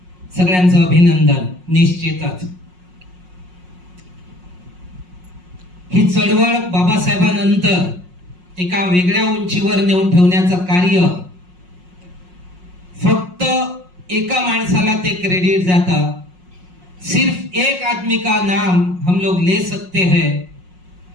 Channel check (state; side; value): late; left; 5.5 ms